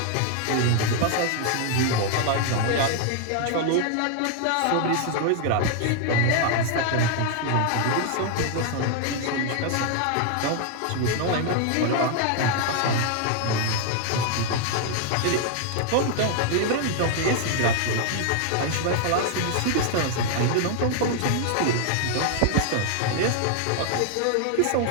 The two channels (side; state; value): both; different; correlation 0.00